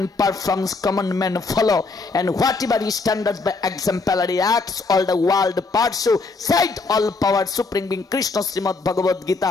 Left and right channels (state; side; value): quieter; right; 3.9 dB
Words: performs, common men follow, and whatever he standards by exemplary acts, all the world pursue. Said all power supreme being Krishna, Srimad Bhagavad